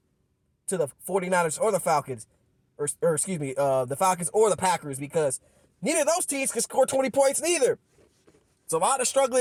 to the 49ers or the Falcons. Or excuse me, the Falcons or the Packers, because neither of those teams can score 20 points neither. It's a lot of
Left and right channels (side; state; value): both; identical; correlation 1.00